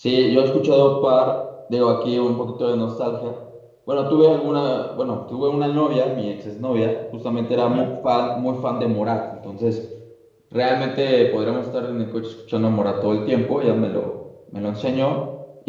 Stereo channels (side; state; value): both; identical; correlation 1.00